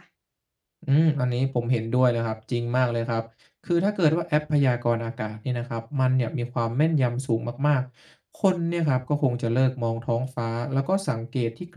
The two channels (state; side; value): identical; both; correlation 1.00